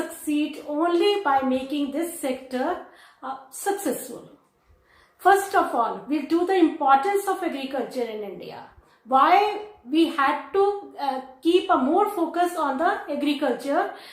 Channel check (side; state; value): both; identical; correlation 1.00